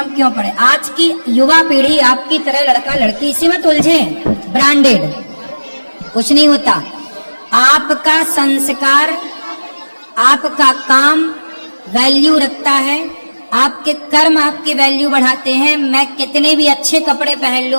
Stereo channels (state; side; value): inverted; both; correlation -1.00